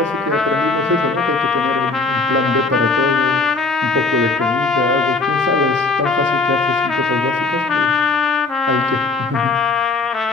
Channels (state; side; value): quieter; right; 3.8 dB